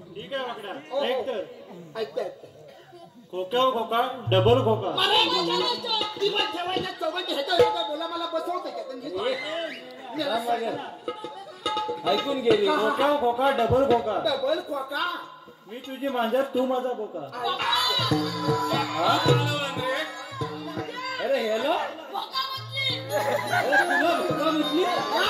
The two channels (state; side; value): identical; both; correlation 1.00